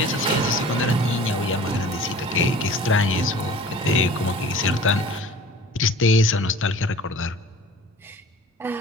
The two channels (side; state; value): both; normal; correlation 0.44